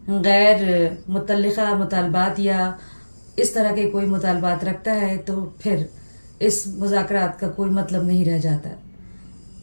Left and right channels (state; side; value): inverted; both; correlation -1.00